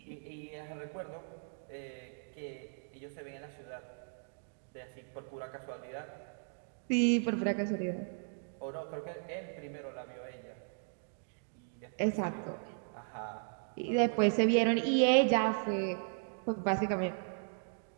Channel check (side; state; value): left; silent; digital silence